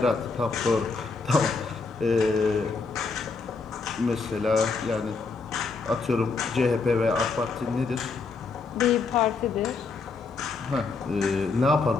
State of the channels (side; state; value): right; quieter; 4.4 dB